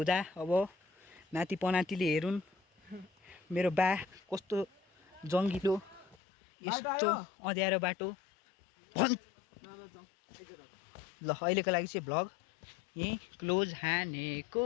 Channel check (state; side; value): drops out; right; at 6.2 s